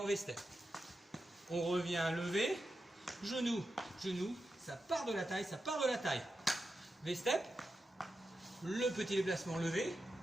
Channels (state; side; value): normal; both; correlation 0.89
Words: V-step. On revient levé, genou, ça part de la taille, V-step, le petit déplacement levé,